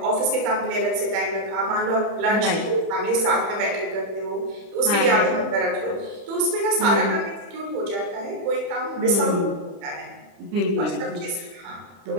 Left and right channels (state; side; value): late; left; 30 ms